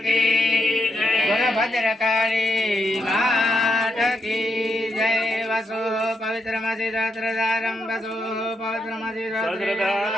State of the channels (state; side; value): normal; both; correlation 0.81